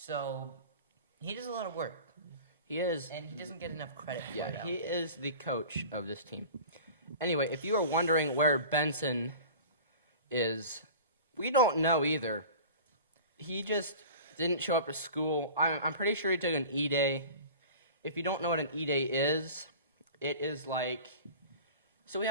he does a lot of work. He is. And he doesn't get enough credit for it. Yeah, he is the coach of this team. Anyway, if you are wondering where Benson is, we don't know either. He just didn't show up to school. I'm pretty sure he took an E-Day. If you don't know what an E-Day is, it is like... So we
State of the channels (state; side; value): inverted; both; correlation -0.39